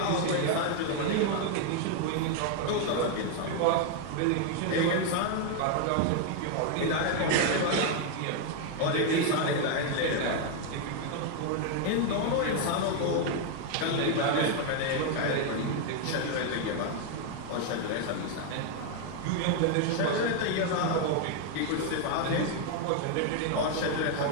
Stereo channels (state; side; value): different; both; correlation 0.01